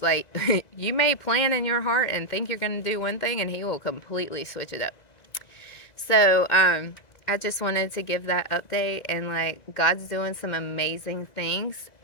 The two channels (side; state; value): right; late; 1.9 ms